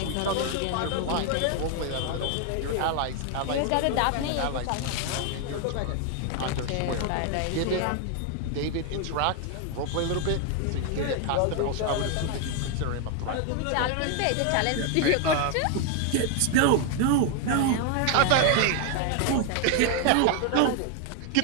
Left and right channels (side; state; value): both; different; correlation 0.01